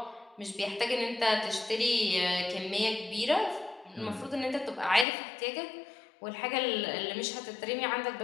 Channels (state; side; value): drops out; right; at 5.1 s